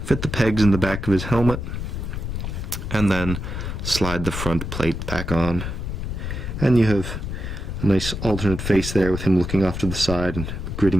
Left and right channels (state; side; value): noise; left; rumble, 5 dB below the sound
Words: fit the pegs in the back of his helmet, and then slide the front plate back on, and you have a nice alternate face there with him looking off to the side and